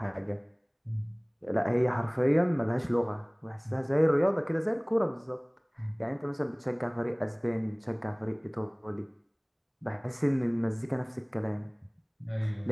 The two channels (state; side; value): identical; both; correlation 1.00